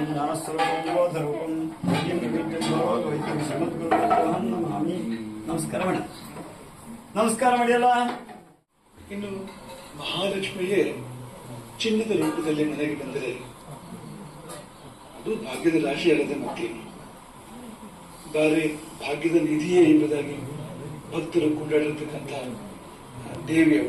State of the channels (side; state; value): both; identical; correlation 1.00